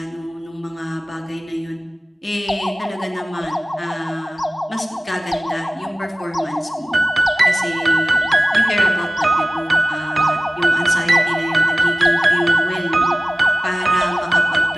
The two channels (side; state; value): both; normal; correlation 0.96